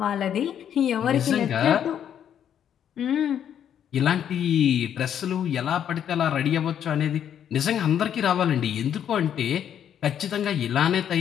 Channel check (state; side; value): quieter; right; 9.4 dB